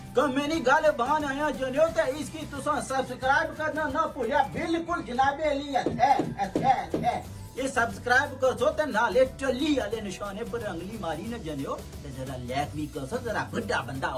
कमेनी गाले बहान आया जानियो ते इसकी तुसा सब्सक्राइब करना ना भूलिया बिल्कुल जनाबे अली है ਇਹ ਸਬਸਕ੍ਰਾਈਬ ਕਰੋ ਤੇ ਨਾਲੇ ਟੱਲੀ ਵਾਲੇ ਨਿਸ਼ਾਨੇ ਪਰ ਅੰਗਲੀ ਮਾਰੀ ਨਾ ਜਨਿਓ ਤੇ ਜਰਾ ਲਾਈਕ ਵੀ ਕਰੋ ਜਰਾ ਵੱਡਾ ਬੰਦਾ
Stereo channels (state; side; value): identical; both; correlation 1.00